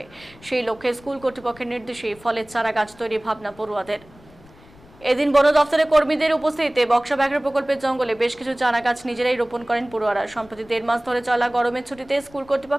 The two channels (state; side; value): noise; left; rumble, 25 dB below the sound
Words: সেই লক্ষ্যে স্কুল কর্তৃপক্ষের নির্দেশে ফলের চারা গাছ তৈরি ভাবনা পড়ুয়াদের। এদিন বন দফতরের কর্মীদের উপস্থিতিতে বক্সা ব্যাঘ্র প্রকল্পের জঙ্গলে বেশ কিছু চারা গাছ নিজেরাই রোপণ করেন পড়ুয়ারা। সম্প্রতি 1.5 মাস ধরে চলা গরমের ছুটিতে স্কুল